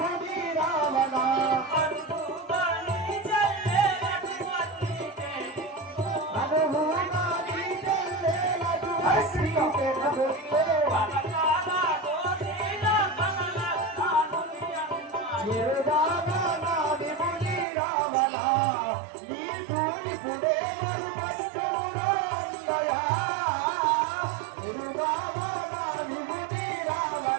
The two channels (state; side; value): drops out; left; at 17.7 s